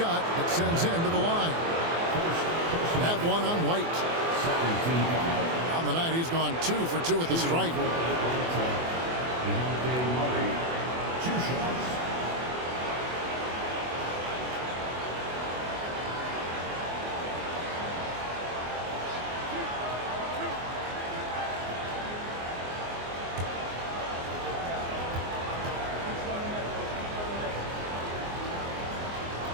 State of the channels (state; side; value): late; left; 24 ms